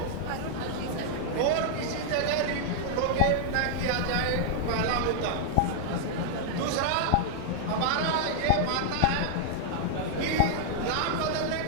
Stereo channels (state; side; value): different; both; correlation -0.01